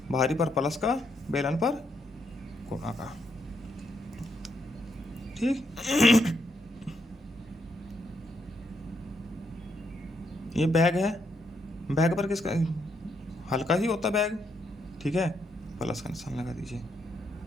भारी पर प्लस का, बेलन पर गुणा का। ठीक, ये बैग है, बैग पर किसका? हल्का ही होता बैग। ठीक है, प्लस का निशान लगा दीजिए।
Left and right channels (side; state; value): both; normal; correlation 0.77